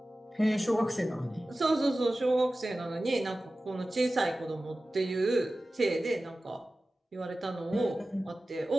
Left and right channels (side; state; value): both; normal; correlation 0.96